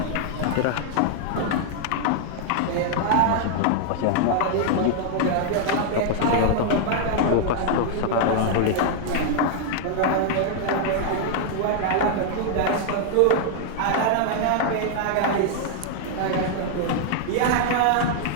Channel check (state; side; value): different; both; correlation -0.01